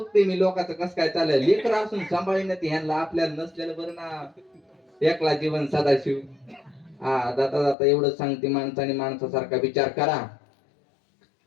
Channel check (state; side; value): drops out; right; at 7.8 s